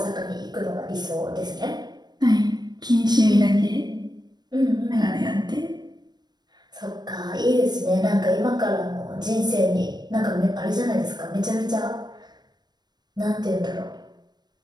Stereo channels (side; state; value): left; late; 0.20 ms